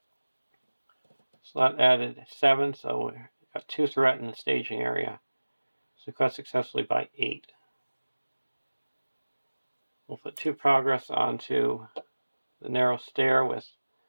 So that added 7, so we got 2 threat in the staging area. So cut successfully by 8. We'll put 2 progress onto the narrow stair with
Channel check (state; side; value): inverted; both; correlation -1.00